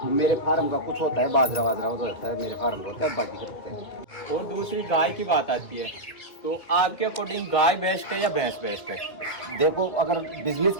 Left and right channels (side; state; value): right; late; 1.9 ms